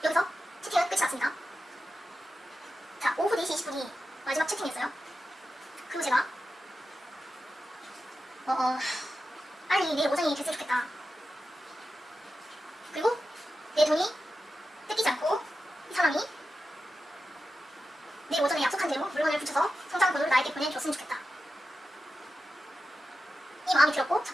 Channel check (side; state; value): both; normal; correlation 0.91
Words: 여기서 채팅은 끝이 났습니다. 자 오후 4시 20분이 마지막 채팅이었어요. 그리고 제가 빨리 내일 오전이 됐으면 좋겠다. 그리고 내 돈이 뜯기지 않고 이 사람이 내일 오전에 약속한 대로 물건을 붙여서 송장 번호를 나에게 보내줬으면 좋겠다. 이 마음이 들었고 첫